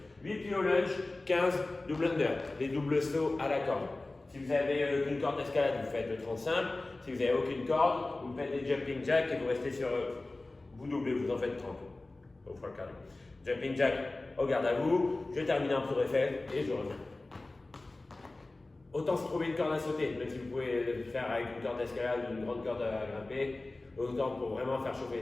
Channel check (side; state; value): right; quieter; 3.0 dB